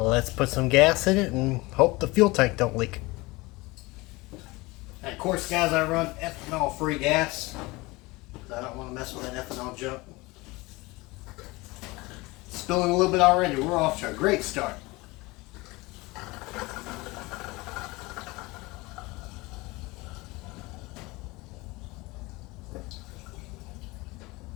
put some gas in it and hope the fuel tank don't leak. And of course guys, I run ethanol free gas. I don't want to mess with that ethanol junk. Spilling a little bit already. We're off to a great start.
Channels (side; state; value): right; quieter; 22.7 dB